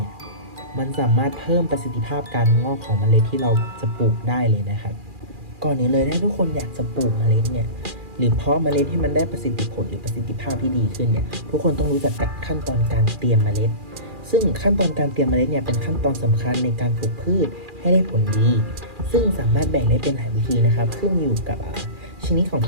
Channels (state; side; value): late; left; 2.4 ms